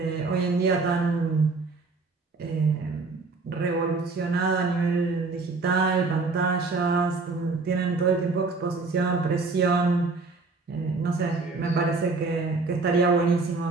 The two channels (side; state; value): left; quieter; 3.9 dB